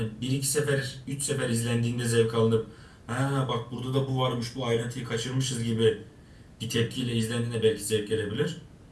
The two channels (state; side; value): identical; both; correlation 1.00